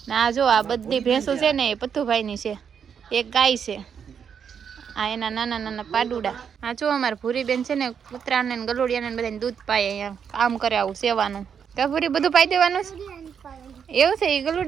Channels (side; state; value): left; quieter; 7.3 dB